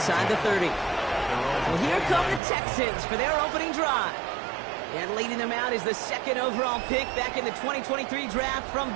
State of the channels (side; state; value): left; drops out; at 2.4 s